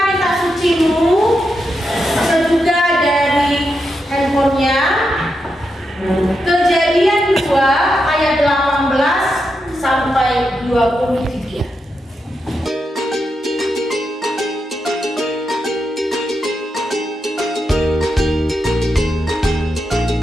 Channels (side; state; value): both; normal; correlation 0.85